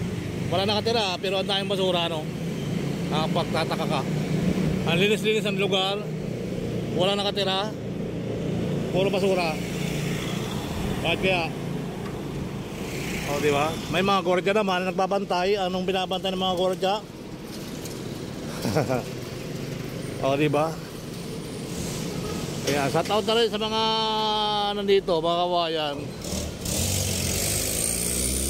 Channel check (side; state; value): both; identical; correlation 1.00